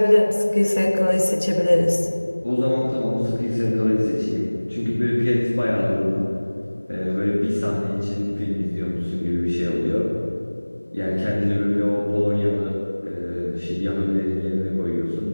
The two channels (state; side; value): inverted; both; correlation -1.00